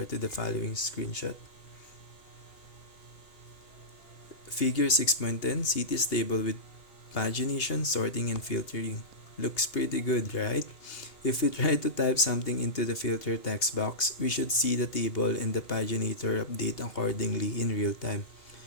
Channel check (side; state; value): right; late; 2.8 ms